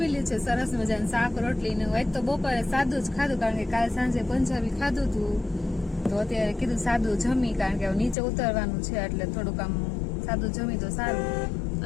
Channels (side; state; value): right; drops out; at 8.2 s